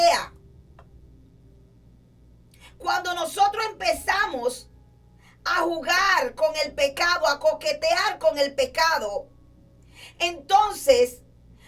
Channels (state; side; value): identical; both; correlation 1.00